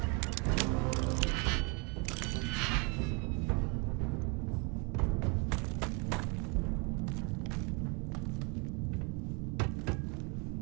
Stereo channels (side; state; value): left; quieter; 31.9 dB